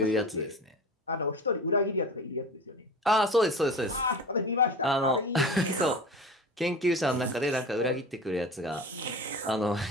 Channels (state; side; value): normal; both; correlation 0.34